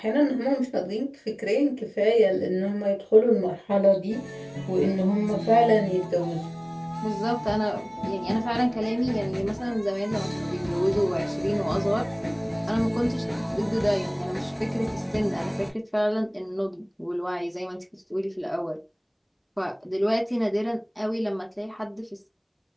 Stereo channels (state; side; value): identical; both; correlation 1.00